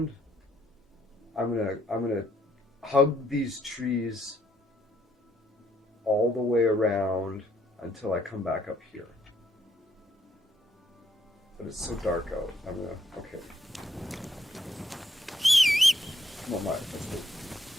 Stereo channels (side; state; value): both; normal; correlation 0.71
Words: I'm gonna hug these trees all the way around until I come back up here. But it's so dark out. I'm gonna okay. Come on, Mike. Let's go.